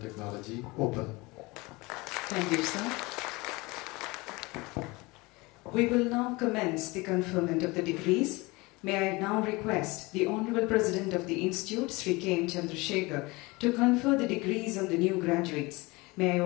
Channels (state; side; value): quieter; right; 23.8 dB